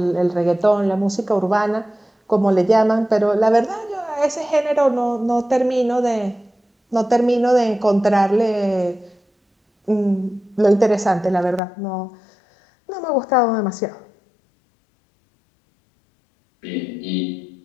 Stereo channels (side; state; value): right; drops out; at 11.6 s